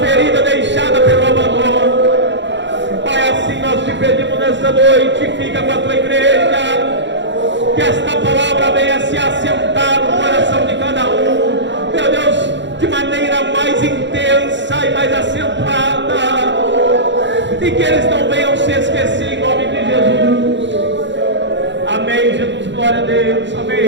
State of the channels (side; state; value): left; late; 0.52 ms